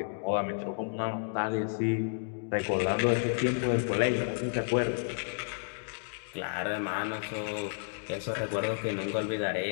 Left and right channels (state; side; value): silent; right; digital silence